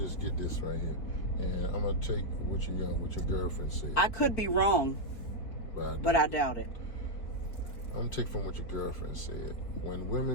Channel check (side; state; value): right; late; 4.4 ms